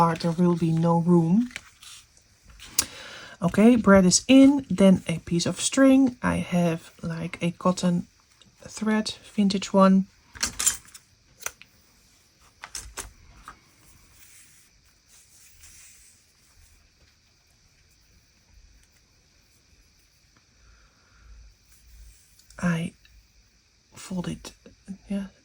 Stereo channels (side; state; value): both; identical; correlation 1.00